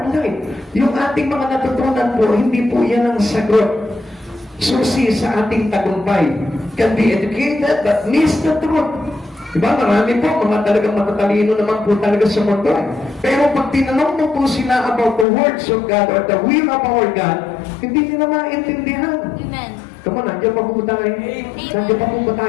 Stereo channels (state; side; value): drops out; right; at 15.2 s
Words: life. Yung ating mga natutunan po, hindi po yan ang sagot. Susi sa ating tagumpay. Can be educated but miss the truth. Diba? Marami po, mga talagang matatalino naman po talaga sa mundo. Pero pag tinanong mo po sila about the words of God or the will of our God, hindi nila maintindihan. Amen. Come on, nandiyan pa po tayo. Nandiyan pa po ba